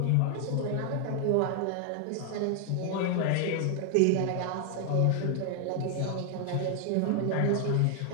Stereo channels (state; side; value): different; both; correlation 0.00